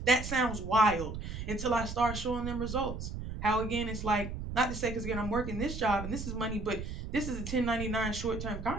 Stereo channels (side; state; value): right; noise; rumble, 7 dB below the sound